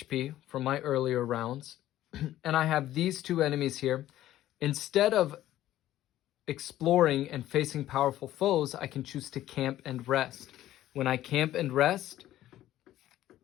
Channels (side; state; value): right; quieter; 13.7 dB